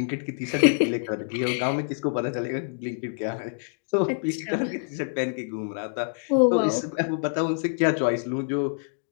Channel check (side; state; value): right; silent; digital silence